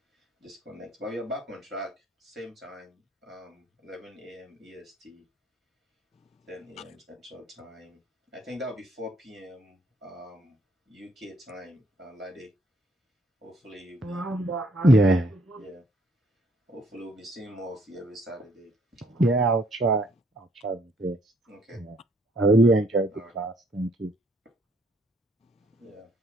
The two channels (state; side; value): normal; both; correlation 0.65